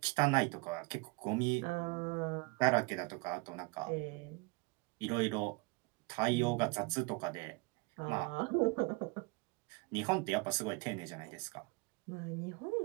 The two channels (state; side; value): quieter; left; 26.6 dB